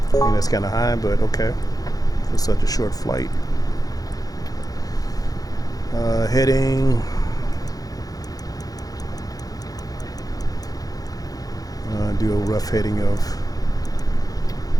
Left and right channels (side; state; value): right; late; 0.18 ms